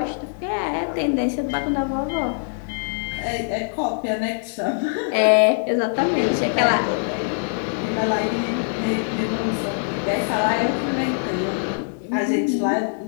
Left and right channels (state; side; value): silent; right; digital silence